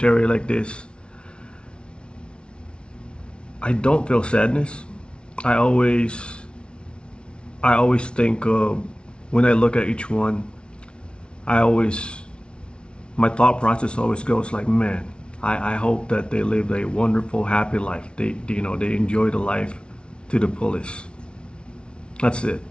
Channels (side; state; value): right; late; 0.057 ms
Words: like this, I don't feel sadness. I always think of, when I look at each one, my thought process always goes like, man, I hope that they lived a wonderful, happy life. They enjoy the life to the fullest. That's it.